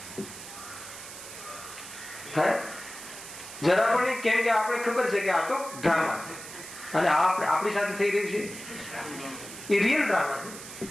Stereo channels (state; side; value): noise; right; hiss, 12 dB below the sound